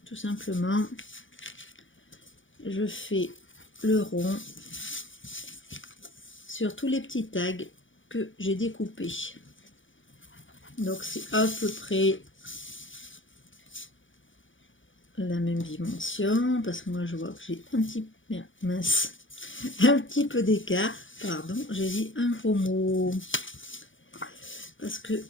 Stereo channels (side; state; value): right; late; 0.56 ms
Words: Tout simplement, je fais le rond sur tous les petits tags que j'ai découpés. Donc c'est à peu près la même dimension, parce que moi je vois que j'ai un petit mince, un petit peu d'écart, pardon, j'ai dit un gros mot parce que